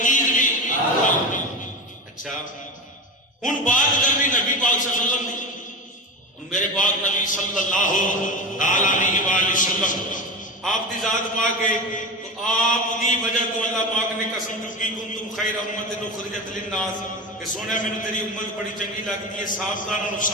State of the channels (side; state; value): both; normal; correlation 0.25